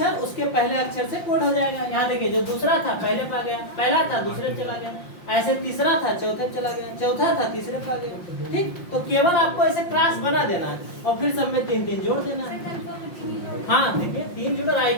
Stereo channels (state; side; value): late; right; 5.7 ms